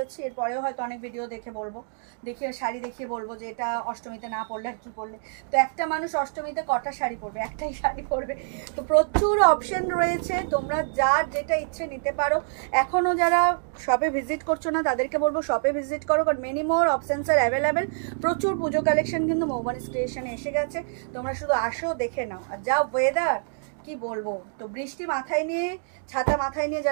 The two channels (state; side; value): silent; left; digital silence